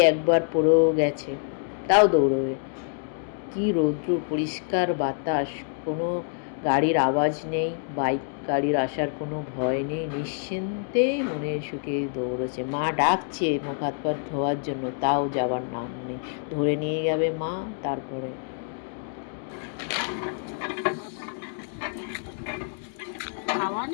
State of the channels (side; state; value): right; silent; digital silence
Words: একবার পড়েও গেছে, তাও দৌড়বে। কি রৌদ্র, পরিষ্কার বাতাস, কোনো গাড়ির আওয়াজ নেই, বাইক গাড়ির আসার কোনো ভয় নেই, নিশ্চিন্তে মনের সুখে দৌড়েছে। মা ডাকছে মুখ হাত পা ধোয়ার জন্য, তাও যাবার নাম নেই। ধরে নিয়ে যাবে মা। তারপরে খাওয়া